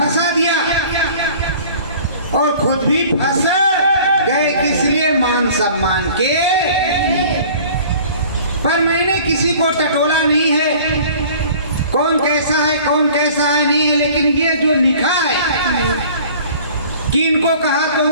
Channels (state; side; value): inverted; both; correlation -0.47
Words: दिया और खुद भी फंस गए। किस लिए? मान सम्मान के। पर मैंने किसी को टटोला नहीं है, कौन कैसा है कौन कैसा है नहीं है, लेकिन ये जो लिखा है कि इनको कहा तो